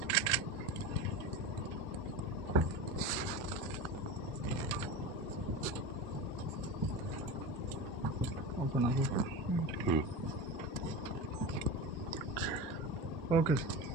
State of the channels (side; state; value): both; normal; correlation 0.26